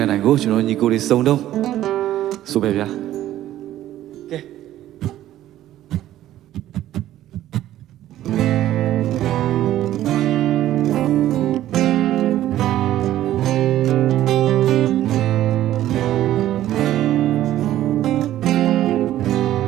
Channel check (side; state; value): left; quieter; 13.3 dB